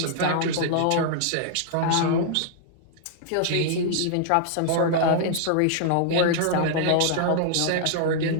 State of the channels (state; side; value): different; both; correlation -0.01